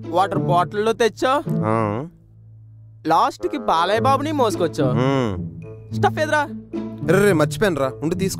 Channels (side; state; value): both; identical; correlation 1.00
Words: వాటర్ బాటిల్లో తెచ్చో, లాస్ట్ కి బాలయ్య బాబుని మోసుకొచ్చో. స్టఫ్ ఎదురా? మర్చిపోయాను రా, ఉండి